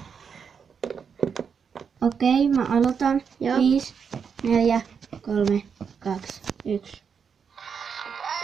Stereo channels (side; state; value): left; quieter; 6.5 dB